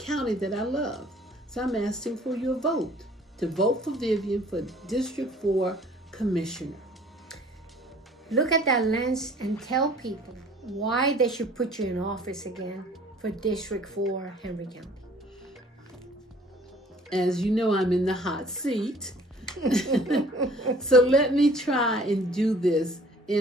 that I love. So I'm asking for your vote, to vote for Vivian for District 4 Commissioner. Look at that lens and tell people why they should put you in office again for District 4 Henry County. As you know, I'm in the hot seat. So let me try and do this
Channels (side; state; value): both; normal; correlation 0.53